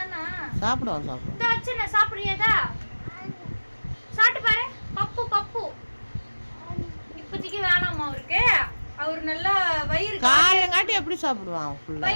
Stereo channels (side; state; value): both; inverted; correlation -1.00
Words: தானே? சாப்பிடுவோம். இந்த வச்சு சாப்பிடுறியதா? சாப்பிட்டு பாரு. பப்பு இப்போதைக்கு வேணாமா அவருக்கு. அவர் நல்லா வயிறு காலையங்காட்டி எப்படி சாப்பிடுவான்?